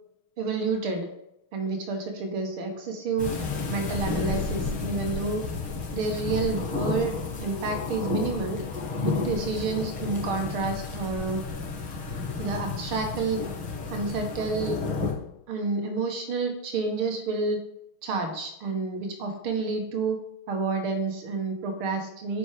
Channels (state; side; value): late; left; 6.3 ms